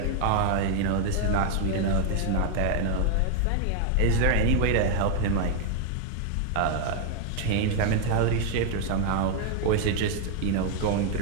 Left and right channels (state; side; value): different; both; correlation 0.00